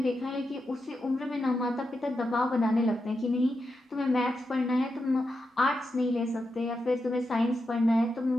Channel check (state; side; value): normal; both; correlation 0.87